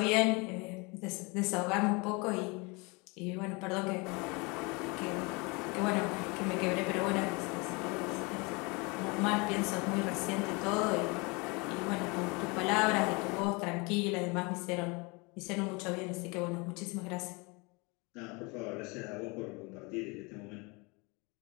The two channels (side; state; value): right; quieter; 28.1 dB